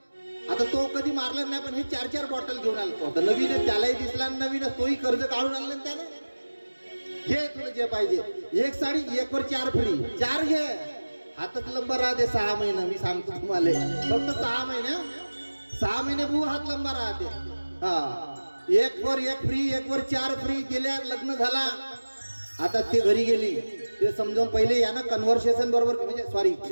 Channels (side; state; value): both; inverted; correlation -1.00